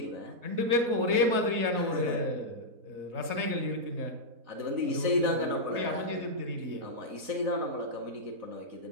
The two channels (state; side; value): late; left; 4.1 ms